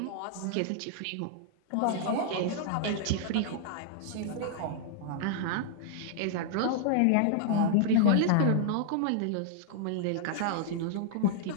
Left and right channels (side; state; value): both; different; correlation -0.01